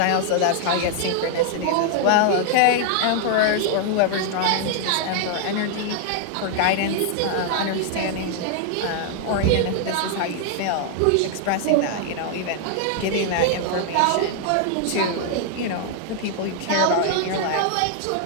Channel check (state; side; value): different; both; correlation 0.00